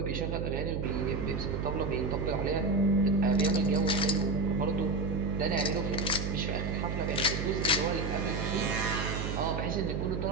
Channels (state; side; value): noise; right; hum, 2 dB below the sound